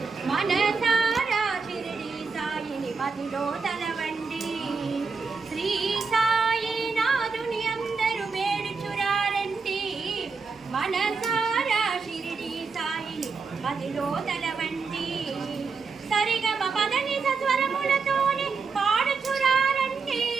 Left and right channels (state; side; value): quieter; left; 4.8 dB